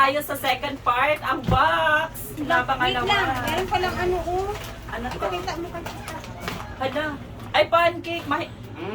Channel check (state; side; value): identical; both; correlation 1.00